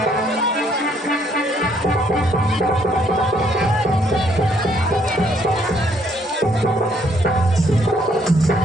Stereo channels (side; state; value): both; normal; correlation 0.68